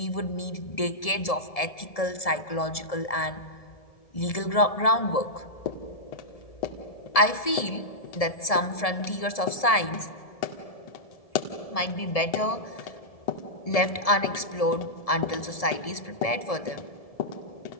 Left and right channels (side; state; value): right; late; 1.7 ms